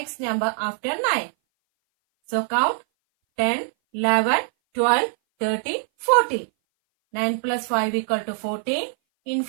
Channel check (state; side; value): silent; left; 59 dB below the other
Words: number after 9. So count 10, 11, 12, 13, 14. 9 plus 5 equal to 14. In